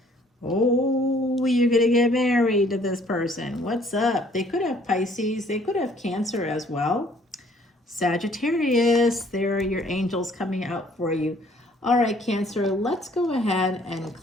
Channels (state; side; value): normal; both; correlation 0.60